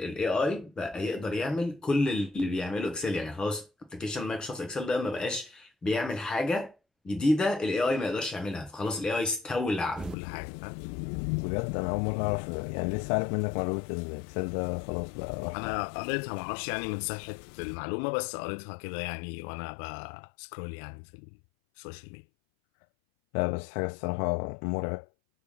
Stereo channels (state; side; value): drops out; right; at 10.2 s